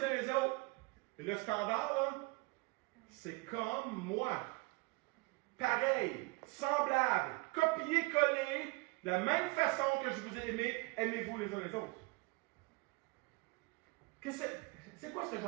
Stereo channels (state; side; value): quieter; left; 26.9 dB